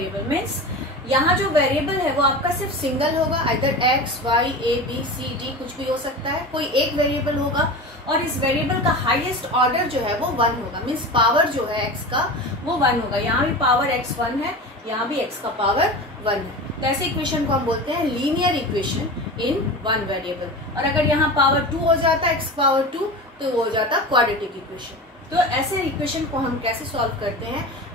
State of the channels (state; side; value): normal; both; correlation 0.30